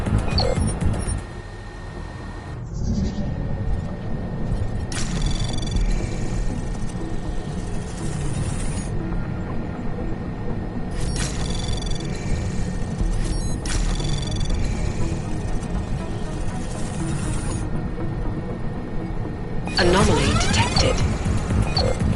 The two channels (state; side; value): identical; both; correlation 1.00